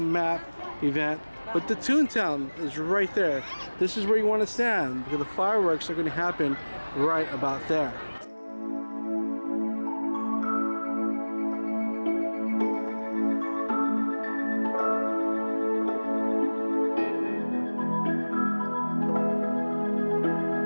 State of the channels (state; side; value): inverted; both; correlation -1.00